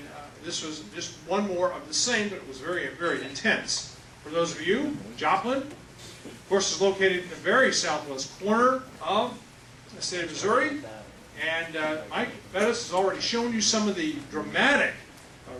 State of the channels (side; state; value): both; identical; correlation 1.00